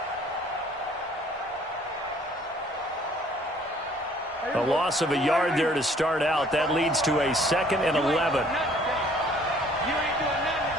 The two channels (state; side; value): normal; both; correlation 0.58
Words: A loss of a yard there to start out. That leads to a 2nd and 11.